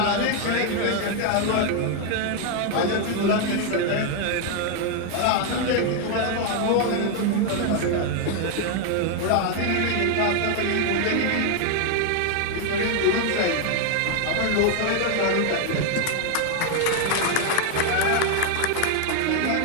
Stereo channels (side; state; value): both; different; correlation 0.01